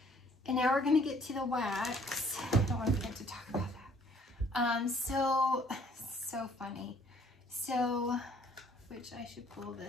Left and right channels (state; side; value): normal; both; correlation 0.60